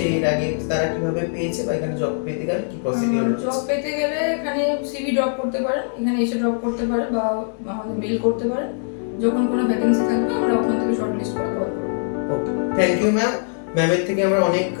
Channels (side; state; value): right; silent; digital silence